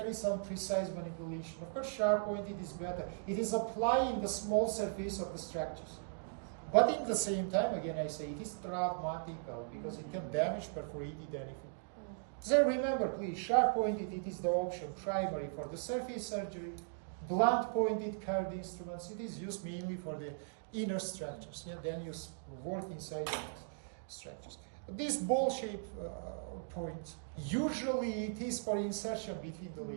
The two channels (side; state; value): left; silent; digital silence